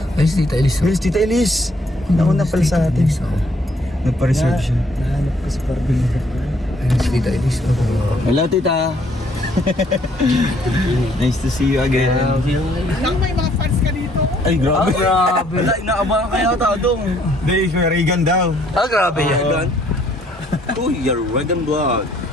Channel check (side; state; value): both; normal; correlation 0.65